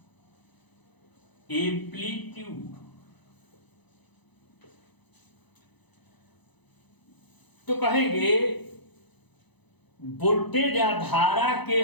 एम्पलीट्यूड। तो कहेंगे वोल्टेज या धारा के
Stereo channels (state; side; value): late; right; 1.0 ms